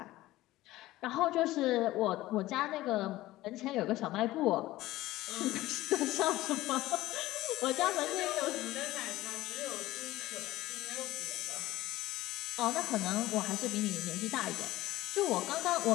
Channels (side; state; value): right; quieter; 16.8 dB